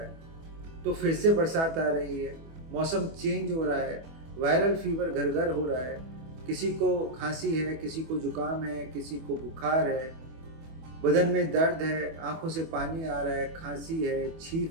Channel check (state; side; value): late; left; 25 ms